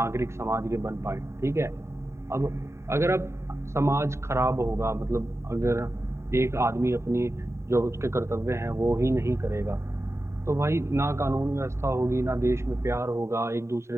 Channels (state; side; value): late; left; 0.13 ms